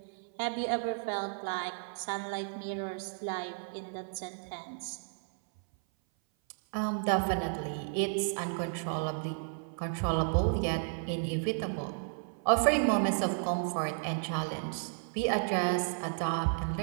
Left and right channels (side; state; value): left; silent; 56 dB below the other